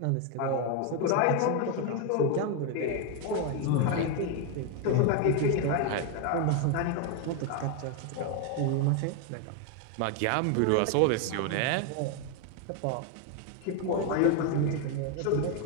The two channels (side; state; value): both; different; correlation 0.01